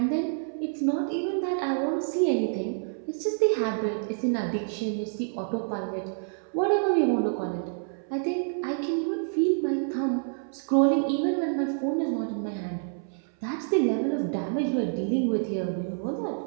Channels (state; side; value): silent; left; 60 dB below the other